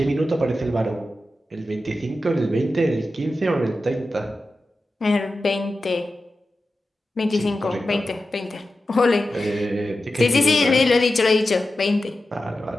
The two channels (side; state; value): both; normal; correlation 0.92